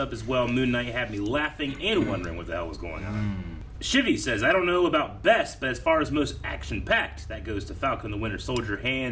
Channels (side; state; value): both; identical; correlation 1.00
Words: as well. Moon Knight had me laughing and wondering what the hell was going on. Shivy says, I don't know about best, but as far as most action-packed, that goes to Falcon the Winter Soldier,